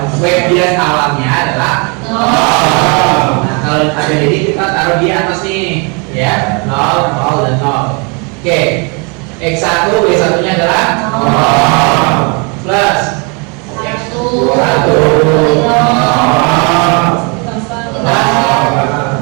Y bias awalnya adalah 0. Nah, kalau ada jadi kita taruh di atas nih, ya, 0, 0 dan 0. Oke, X1 Y1 nya adalah 0 plus 1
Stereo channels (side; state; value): left; quieter; 32.9 dB